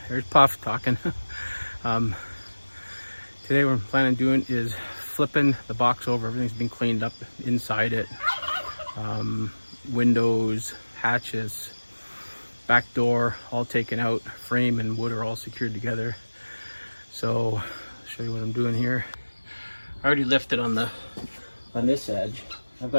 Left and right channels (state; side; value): inverted; both; correlation -1.00